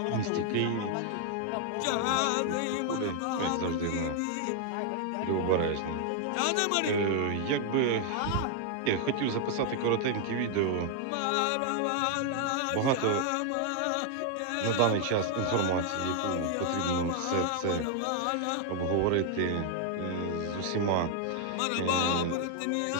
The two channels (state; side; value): different; both; correlation 0.00